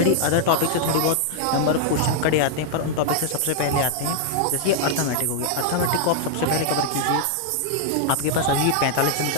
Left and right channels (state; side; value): different; both; correlation -0.01